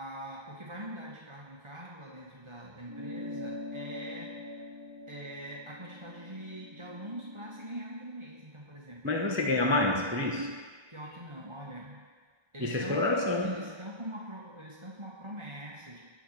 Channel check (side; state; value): left; late; 1.3 ms